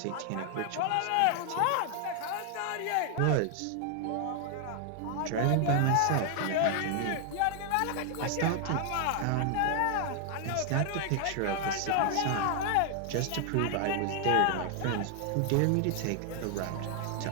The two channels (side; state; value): both; different; correlation 0.00